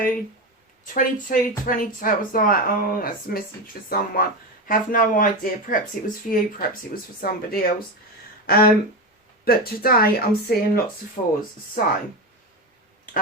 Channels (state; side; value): normal; both; correlation 0.17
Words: 22, 22. I was like, oh, that's a message for someone. Have no idea. Perhaps it was for you. Perhaps it was for somebody else. But today I'm seeing lots of 4s. So,